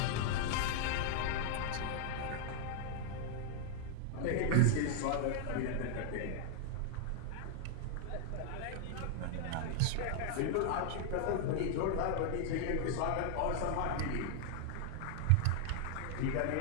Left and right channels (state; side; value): different; both; correlation -0.01